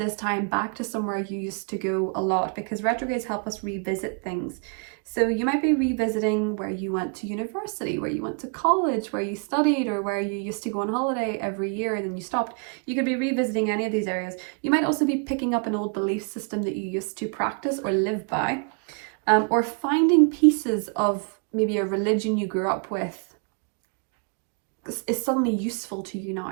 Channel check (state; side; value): quieter; left; 39.8 dB